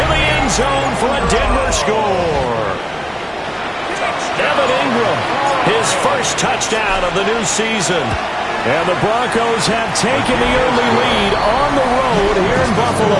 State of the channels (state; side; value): identical; both; correlation 1.00